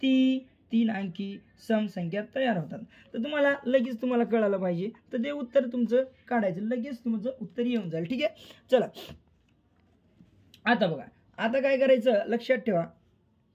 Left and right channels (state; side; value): identical; both; correlation 1.00